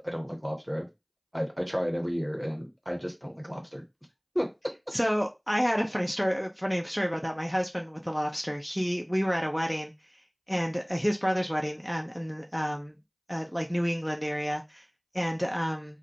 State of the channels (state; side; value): identical; both; correlation 1.00